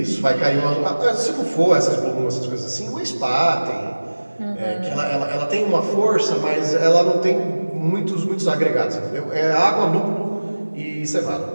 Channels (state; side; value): inverted; both; correlation -1.00